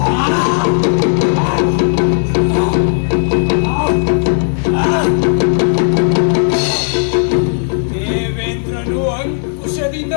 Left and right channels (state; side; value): silent; right; digital silence